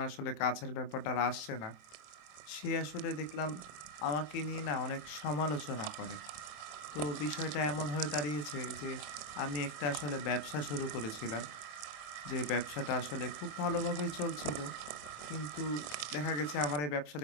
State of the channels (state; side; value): late; right; 27 ms